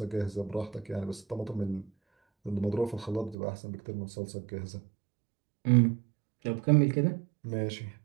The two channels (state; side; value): drops out; left; at 3.4 s